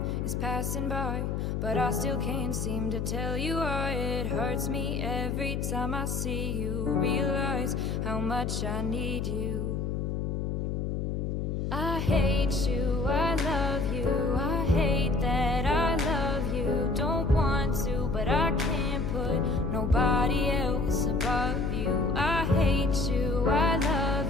is passing by, but I still can't seem to tell you why. It hurts me every time I see you, realize how much I need you. I hate you, I love you, I hate that I love you. Don't want to, but I can't put nobody else above you. I hate you, I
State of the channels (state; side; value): noise; left; hum, 1 dB below the sound